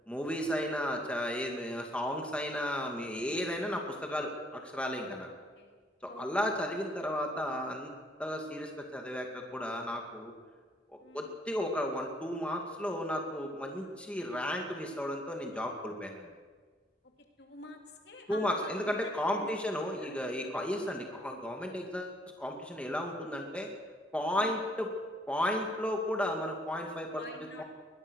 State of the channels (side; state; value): both; normal; correlation 0.64